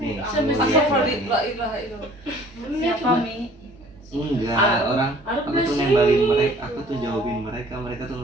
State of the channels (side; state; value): both; normal; correlation 0.53